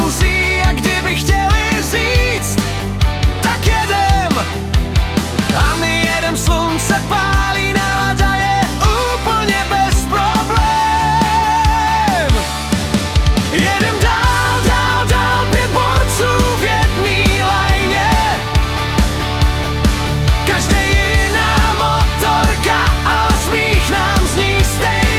a kdyby chtěli říct, tak jedem. A my jedem, slunce pálí, nálada je úplně bez problém. Jedem dál, dál, dál, 5 borců v jedný lajně. Každý jiná motorka, ale smích nám zní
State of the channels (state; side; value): identical; both; correlation 1.00